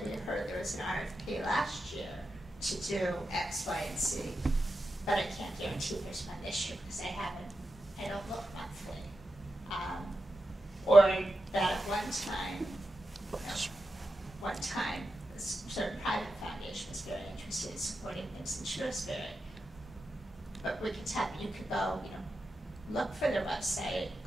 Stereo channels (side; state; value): both; normal; correlation 0.90